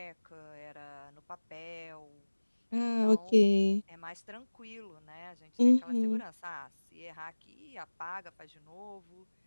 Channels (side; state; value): both; inverted; correlation -1.00